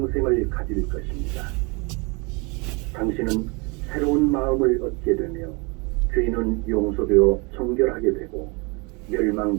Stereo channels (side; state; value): left; quieter; 29.5 dB